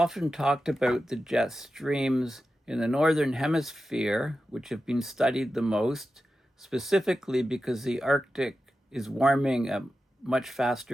talked about the jet streams in the Northern Hemisphere, which have been studied the most, specifically because the Arctic is warming at much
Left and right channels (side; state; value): both; normal; correlation 0.92